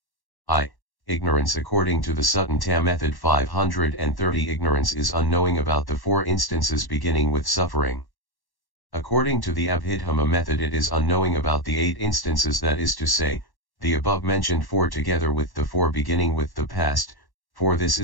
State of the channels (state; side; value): late; right; 1.1 ms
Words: I. Ignorance. According to the Sutta method 530, ignorance is unknowing about the 4 instances beginning with suffering. According to the Abhidhamma method, it is unknowing about the 8 instances, that is to say, the above mentioned 4 together with the 4 beginning with the past, for this